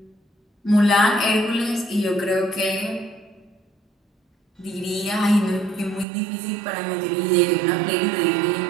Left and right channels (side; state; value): left; drops out; at 6.1 s